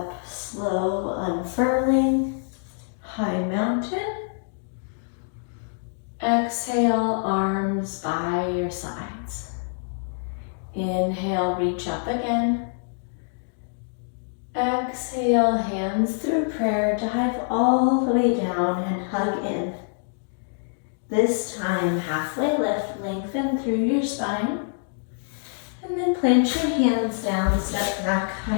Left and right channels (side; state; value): right; silent; digital silence